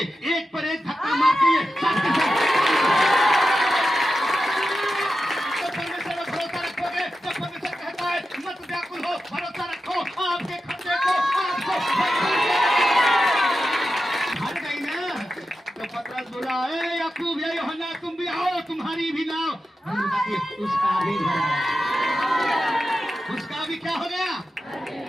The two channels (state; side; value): normal; both; correlation 0.91